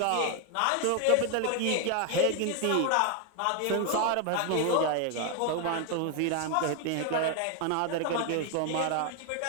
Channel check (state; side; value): different; both; correlation 0.01